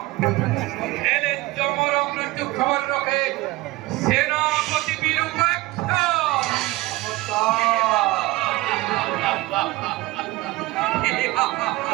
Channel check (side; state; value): left; quieter; 19.9 dB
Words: এলে জমর মৃত্যু খবর রাখে সেনাপতি বীরুপাক্ষ।